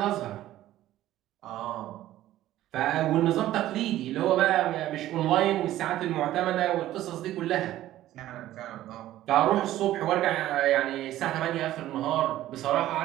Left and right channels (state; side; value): quieter; left; 14.0 dB